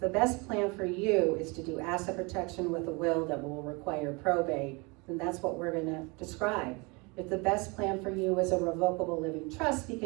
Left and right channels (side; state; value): left; quieter; 28.3 dB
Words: best plan for you is to do asset protection with a will that will require probate, then that's what we're going to describe. If the best plan for you is a revocable living trust